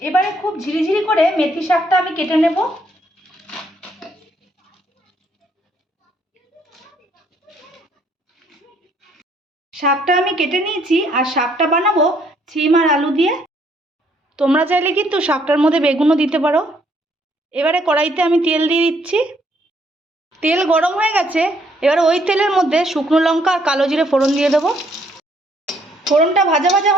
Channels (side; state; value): both; normal; correlation 0.67